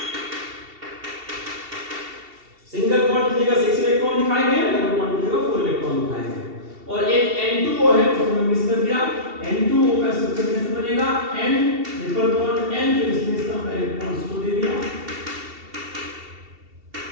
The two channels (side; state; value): left; late; 2.7 ms